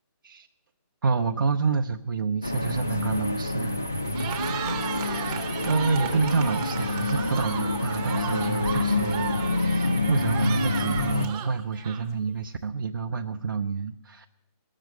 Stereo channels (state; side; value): inverted; both; correlation -0.74